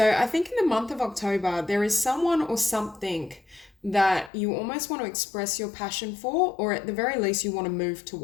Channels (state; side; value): drops out; right; at 4.3 s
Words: I think in the month of October, there is someone or something that you almost want to express your passion for, or at the very least you want to move